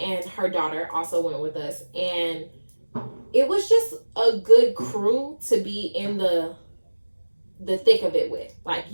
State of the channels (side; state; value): both; inverted; correlation -1.00